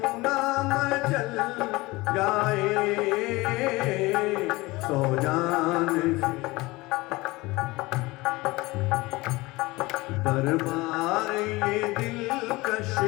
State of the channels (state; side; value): quieter; right; 21.5 dB